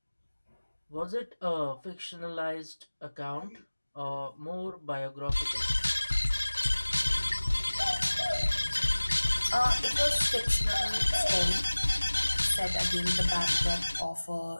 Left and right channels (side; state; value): both; inverted; correlation -1.00